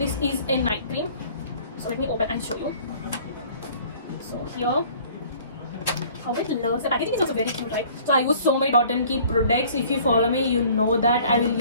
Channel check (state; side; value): inverted; both; correlation -0.52